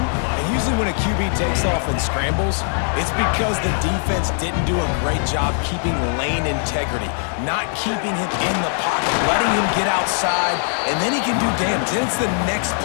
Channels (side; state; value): right; silent; 62 dB below the other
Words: Usually when a QB takes off and scrambles, it's because the defense didn't do a great job keeping lane integrity, not keeping him in the pocket, letting him get outside, and then he can do damage. Then it's the next